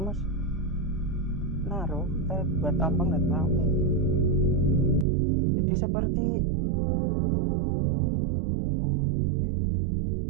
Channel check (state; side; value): drops out; left; at 5.1 s